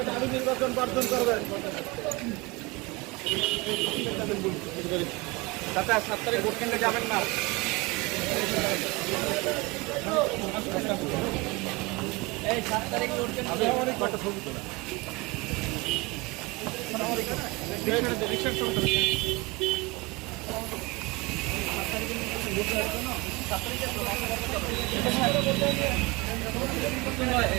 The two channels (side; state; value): left; quieter; 24.4 dB